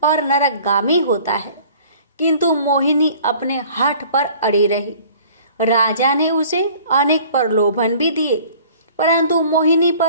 और नरकगामी होता है, किंतु मोहिनी अपने हठ पर अड़ी रही। राजा ने उसे अनेक प्रलोभन भी दिए, परंतु मोहिनी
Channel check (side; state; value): both; inverted; correlation -0.50